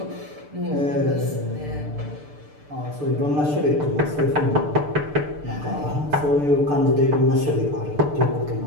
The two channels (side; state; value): left; late; 6.8 ms